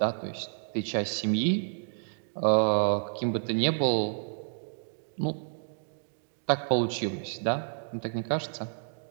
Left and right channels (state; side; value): silent; left; digital silence